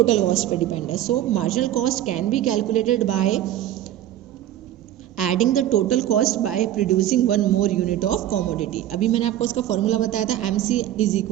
कॉस्ट पे डिपेंड है। So marginal cost can be calculated by adding the total cost by producing one more unit of commodity. अभी मैंने आपको उसका फॉर्मूला बताया था, MC is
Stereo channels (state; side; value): quieter; left; 12.4 dB